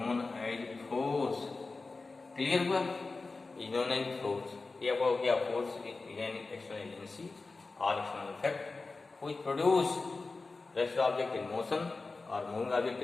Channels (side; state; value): right; quieter; 3.8 dB